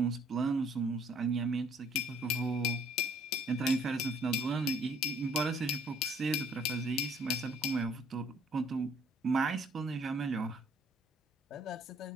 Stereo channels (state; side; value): normal; both; correlation 0.61